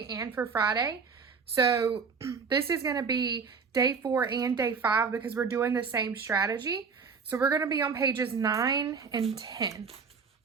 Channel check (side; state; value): left; quieter; 5.5 dB